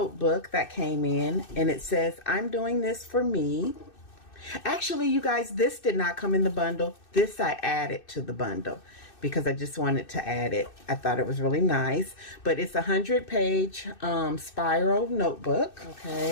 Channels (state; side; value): late; right; 2.6 ms